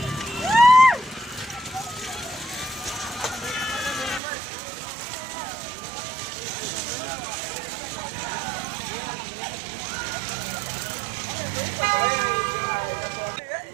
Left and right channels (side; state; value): left; drops out; at 4.2 s